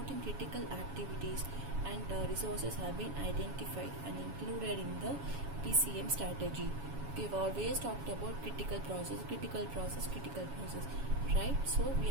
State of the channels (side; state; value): left; late; 7.2 ms